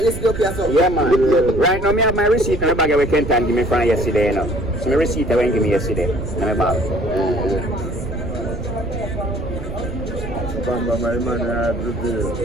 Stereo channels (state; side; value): noise; right; rumble, 9 dB below the sound